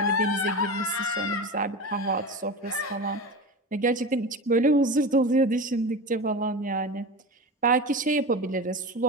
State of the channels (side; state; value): both; normal; correlation 0.27